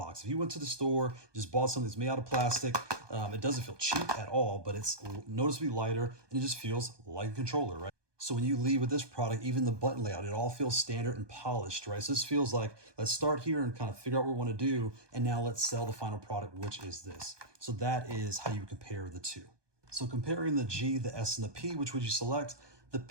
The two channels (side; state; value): left; late; 1.2 ms